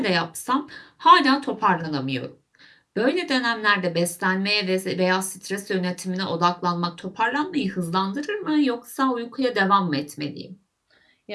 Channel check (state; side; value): identical; both; correlation 1.00